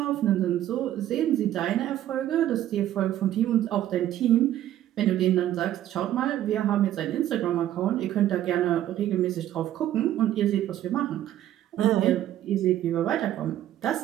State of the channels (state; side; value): quieter; left; 12.5 dB